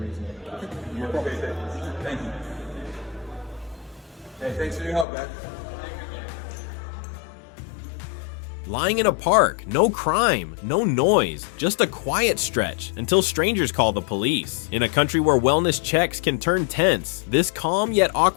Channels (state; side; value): drops out; right; at 5.1 s